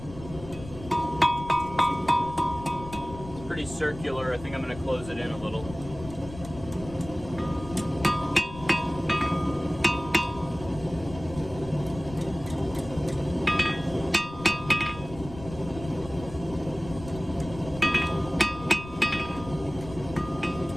Pretty circular. I think I'm going to close it in a little.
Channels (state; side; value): noise; left; rumble, 14 dB below the sound